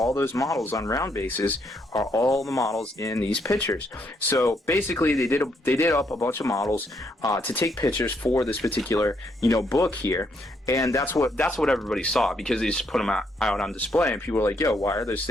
those models on round bases are all the models in these pictures. So basically they did up a bunch of models to take pictures for this particular, you know, book here. And that's what everybody saw, because they just put them out on display, and people were like, yo, why are those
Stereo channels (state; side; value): normal; both; correlation 0.74